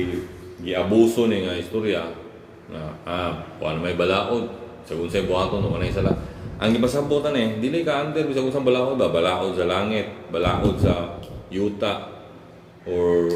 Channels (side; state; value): both; identical; correlation 1.00